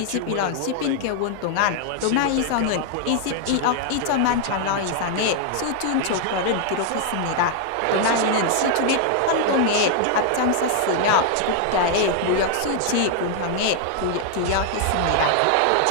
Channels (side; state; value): both; different; correlation 0.00